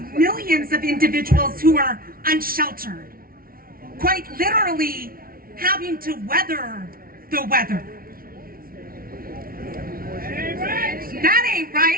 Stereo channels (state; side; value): late; left; 0.43 ms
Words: millions of individuals who are unsheltered, quite literally having to weather the weather. That ain't